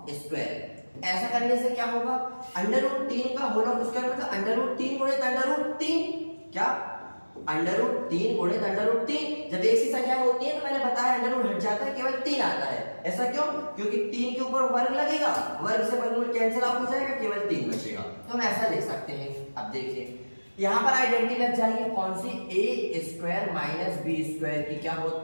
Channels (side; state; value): both; inverted; correlation -1.00